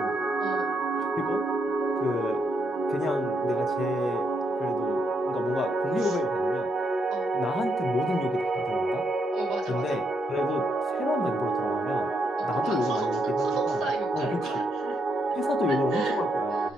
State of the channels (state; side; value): normal; both; correlation 0.78